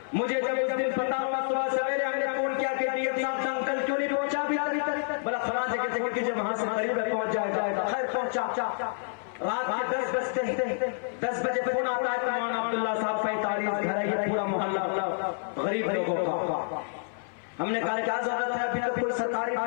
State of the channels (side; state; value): right; silent; 55 dB below the other